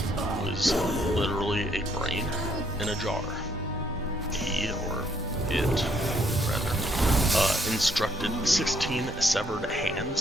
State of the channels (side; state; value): both; normal; correlation 0.69